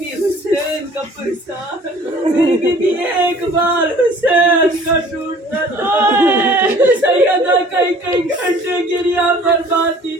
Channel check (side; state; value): both; normal; correlation 0.51